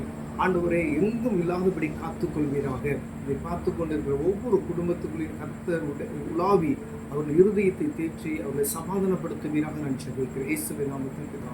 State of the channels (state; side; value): identical; both; correlation 1.00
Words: ஆண்டவரே எங்கும் இல்லாதபடி காத்துக்கொள்வீராக. இதை பார்த்து கொண்டிருக்கிற ஒவ்வொரு குடும்பத்துக்குள்ளையும் கர்த்தர் உலாவி அவர்கள் இருதயத்தை தேற்றி அவர்களை சமாதானப்படுத்துவீராக நான் ஜெபிக்கிறேன். இயேசுவின் நாமத்தில்